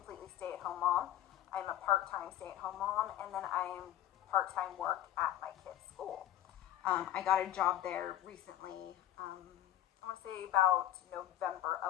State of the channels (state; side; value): quieter; right; 12.5 dB